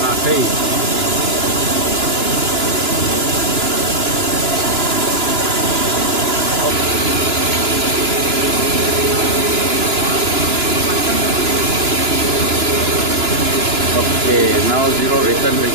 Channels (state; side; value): late; left; 2.9 ms